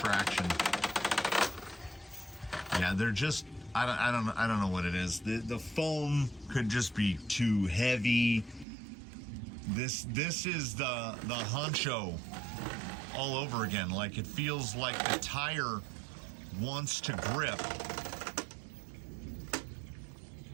Yeah, they're just I don't know what it is. The foam could just be too heavy. This is the honcho all over again. Like, it feels like the tire wants to grip.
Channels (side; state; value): left; drops out; at 8.7 s